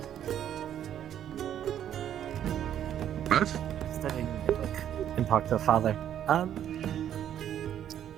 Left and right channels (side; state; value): left; quieter; 10.3 dB